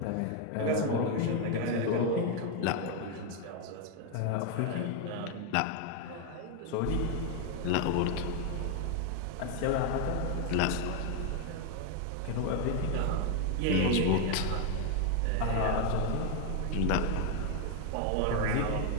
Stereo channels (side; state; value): both; different; correlation 0.01